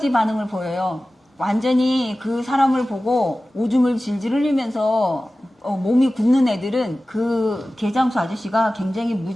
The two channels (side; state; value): both; normal; correlation 0.96